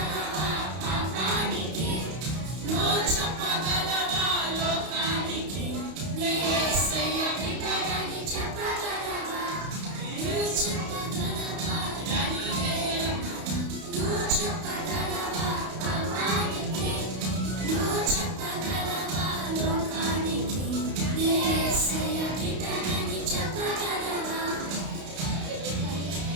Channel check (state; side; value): late; left; 32 ms